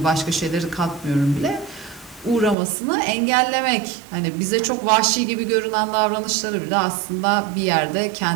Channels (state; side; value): drops out; left; at 2.6 s